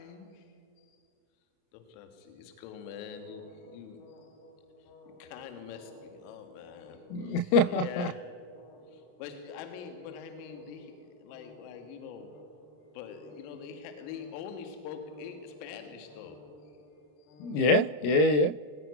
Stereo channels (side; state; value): right; late; 33 ms